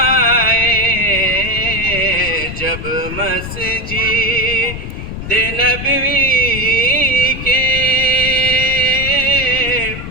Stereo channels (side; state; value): left; noise; rumble, 9 dB below the sound